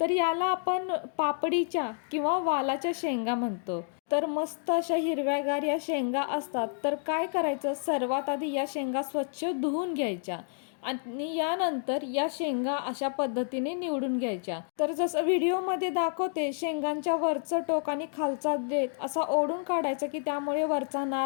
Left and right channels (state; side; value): silent; right; 58 dB below the other